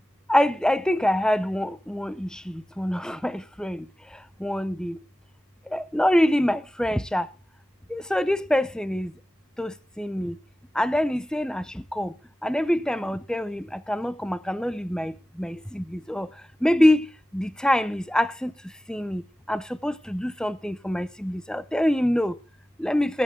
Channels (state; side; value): normal; both; correlation 0.95